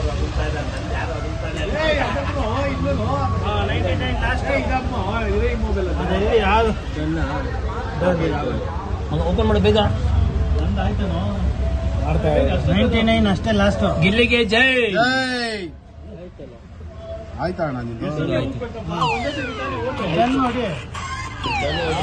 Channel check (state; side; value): identical; both; correlation 1.00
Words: ಓಪನ್ ಮಾಡಿ ಬೇಗ. 99 ಅಷ್ಟೇ ಲಾಸ್ಟ್. ಗಿಲ್ಲಿಗೆ ಜೈ. ಆಯ್ತಾ ಅಣ್ಣ ನಿಮ್ದು?